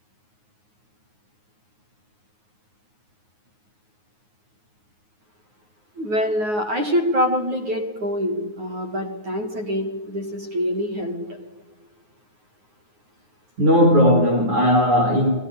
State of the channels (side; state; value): left; late; 9.5 ms